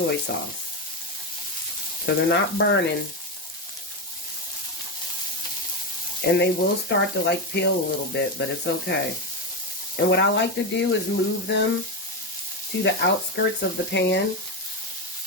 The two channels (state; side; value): normal; both; correlation 0.12